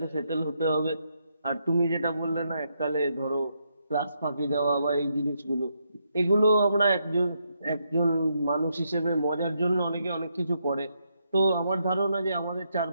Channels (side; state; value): both; inverted; correlation -0.79